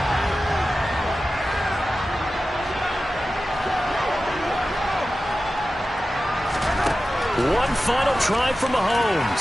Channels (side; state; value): both; normal; correlation 0.94